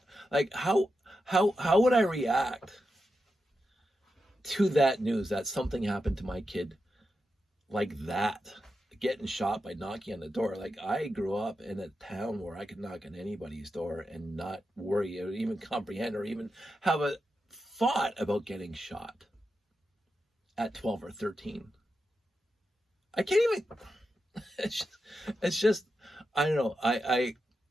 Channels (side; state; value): both; normal; correlation 0.88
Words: How would I react to that news that something happened to my kid like that? Getting shot by knocking on the door. Like, I grew up in a town where I could knock on anybody's door and not worry or even comprehend or even have a thought about getting shot at 12 or 13. I can't even, it's just, I don't know.